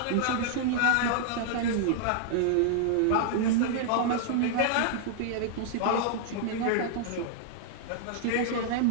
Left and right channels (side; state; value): both; different; correlation -0.01